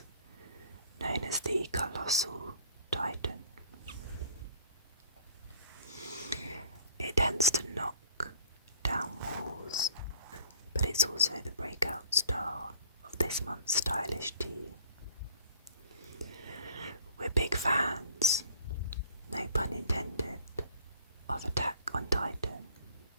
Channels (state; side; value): inverted; both; correlation -0.52